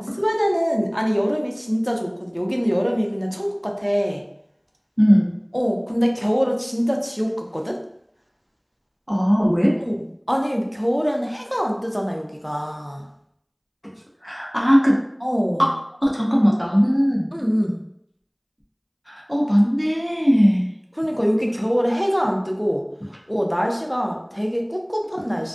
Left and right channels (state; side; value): identical; both; correlation 1.00